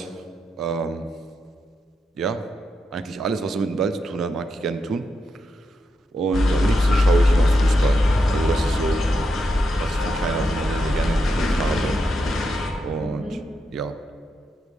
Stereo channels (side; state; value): both; normal; correlation 0.85